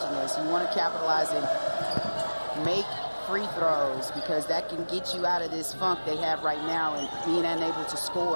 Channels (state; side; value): inverted; both; correlation -1.00